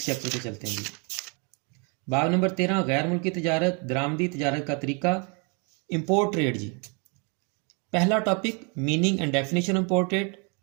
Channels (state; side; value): quieter; left; 34.4 dB